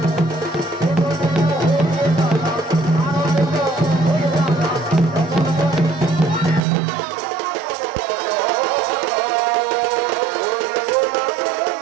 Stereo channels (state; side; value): drops out; left; at 6.6 s